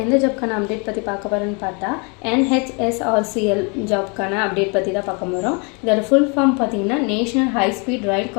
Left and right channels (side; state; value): right; quieter; 33.3 dB